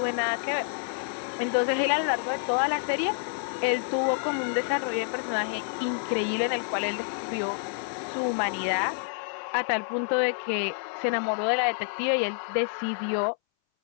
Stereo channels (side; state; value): right; silent; 59 dB below the other